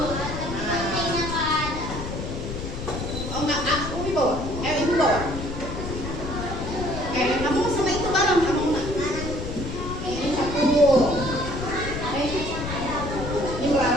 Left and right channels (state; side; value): noise; left; rumble, 6 dB below the sound